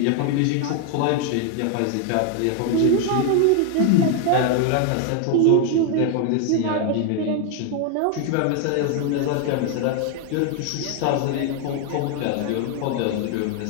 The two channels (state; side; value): different; both; correlation 0.01